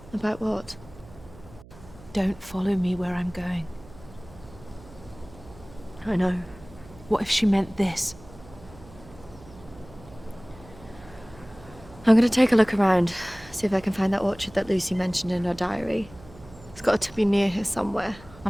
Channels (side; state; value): right; noise; hum, 20 dB below the sound